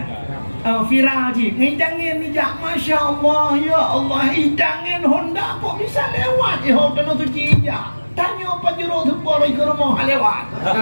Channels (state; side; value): inverted; both; correlation -1.00